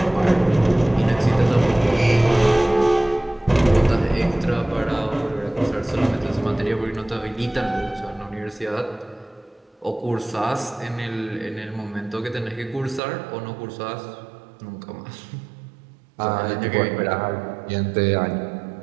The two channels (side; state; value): left; drops out; at 13.0 s